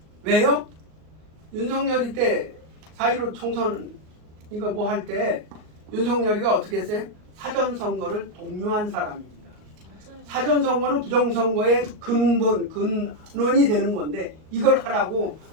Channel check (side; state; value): left; late; 38 ms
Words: 왜요? 윤석열이 때 4.15 총선 이거 뭐 할 때 윤석열이가 어떻게 했어요? 사전선거를 독려한 사람입니다. 사전선거는 부정선거의 근원이 되는 건데 이걸 하라고